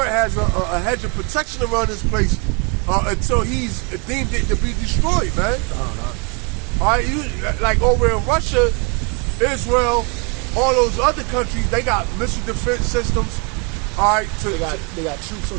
has a hedge of protection around this place until He's deemed it to be destroyed, man. All right, like over in Russia, Israel, all those other countries, they got missile defense systems. All right, they got troops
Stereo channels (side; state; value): left; quieter; 33.3 dB